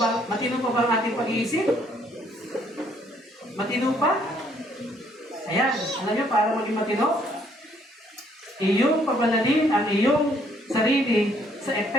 ba? Matino pa ba ang ating pag-iisip? Matino pa? Ayan, alam niyo, para maging matino, iyong pabanalin ang iyong sarili sa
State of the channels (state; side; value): normal; both; correlation 0.66